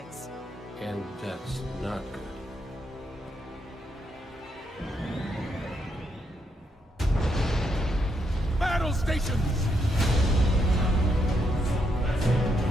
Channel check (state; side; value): normal; both; correlation 0.78